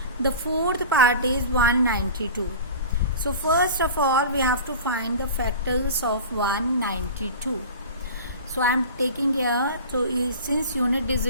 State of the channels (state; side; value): inverted; both; correlation -0.36